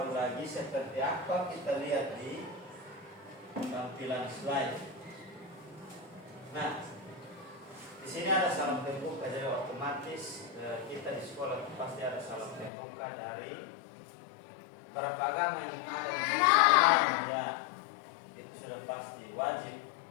lagi. Seperti apa kita lihat di tampilan slide. Nah, di sini ada salam pembuka, jadi otomatis kita di sekolah pasti ada salam pembuka dari beberapa agama yang ada di sini. Ya, itu sudah pasti wajib.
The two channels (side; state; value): right; drops out; at 12.7 s